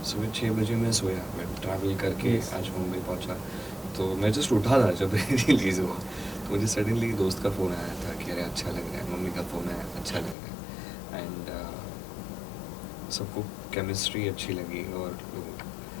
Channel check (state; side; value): drops out; right; at 10.4 s